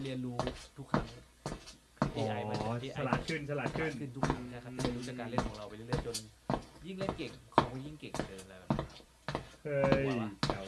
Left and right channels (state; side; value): identical; both; correlation 1.00